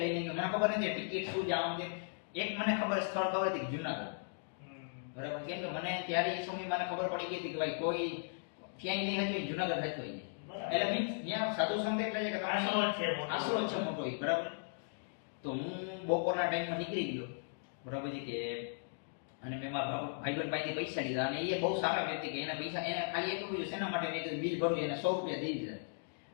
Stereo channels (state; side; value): silent; right; digital silence